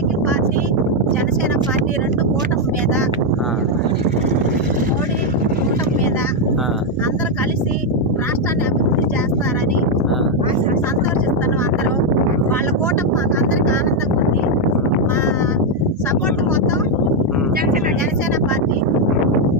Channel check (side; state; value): both; normal; correlation 0.02